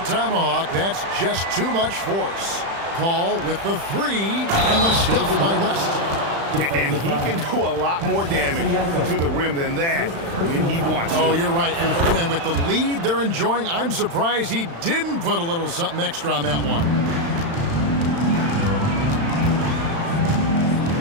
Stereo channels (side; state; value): left; late; 35 ms